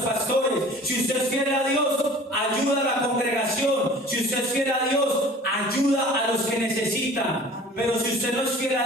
Si usted es fiel a Dios, ayuda a la congregación. Si usted es fiel a Dios, ayuda a los que necesitan. Pero si usted no es fiel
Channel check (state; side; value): normal; both; correlation 0.45